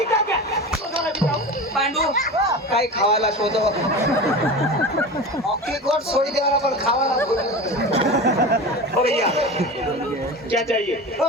क्या? लोज वाला दिखाओ। पांडू काय खावायला शोधो अख्खी गोट सोडी देवाला पण खावाला बोललो. ओ भैया, क्या चाहिए?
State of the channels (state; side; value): normal; both; correlation 0.30